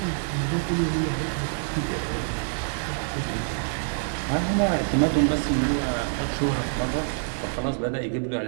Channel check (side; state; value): left; silent; digital silence